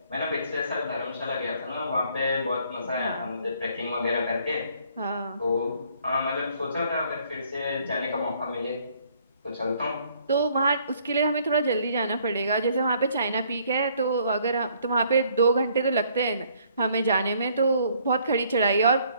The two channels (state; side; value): inverted; both; correlation -0.64